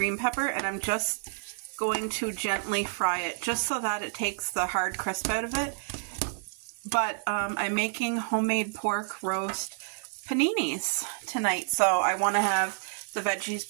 pepper, and I'm just going to gently fry it just so that it takes the hard crisp out of it. But I'm making homemade pork roast paninis tonight, so I want to have the veggies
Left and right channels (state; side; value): silent; left; digital silence